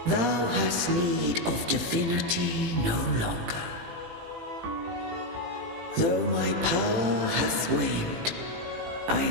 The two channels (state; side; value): late; left; 18 ms